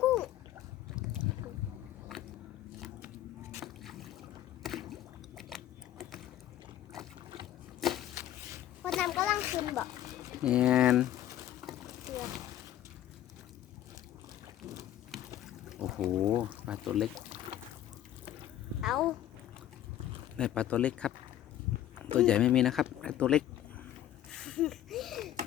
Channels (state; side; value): quieter; right; 12.2 dB